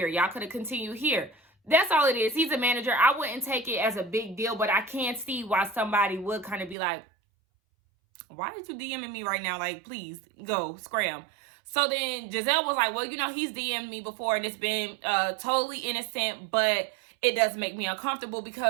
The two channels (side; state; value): left; drops out; at 6.8 s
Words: Y'all could have continued here. That's all it is. He's a manager. I wouldn't take it as a big deal, but I can see why somebody would kind of be like, "Why did you DMing me right now? Like, please go scram." So then Giselle was like, "Well, he's DM'd me before, and it's been totally innocent, but it does make me uncomfortable